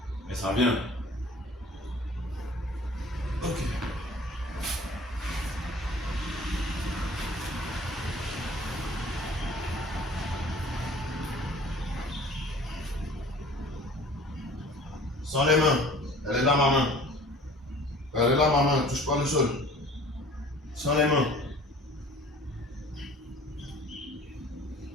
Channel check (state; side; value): normal; both; correlation 0.47